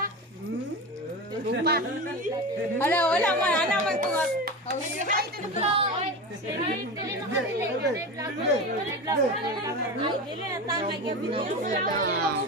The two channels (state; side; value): normal; both; correlation 0.25